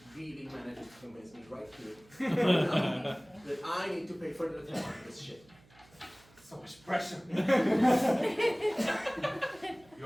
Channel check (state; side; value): noise; right; hum, 28 dB below the sound